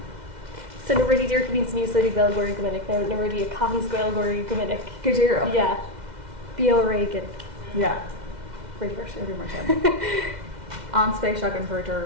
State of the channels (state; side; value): late; left; 2.0 ms